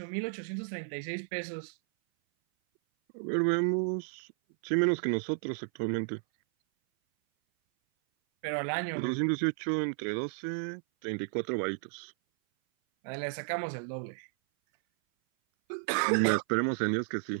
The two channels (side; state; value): left; silent; 56 dB below the other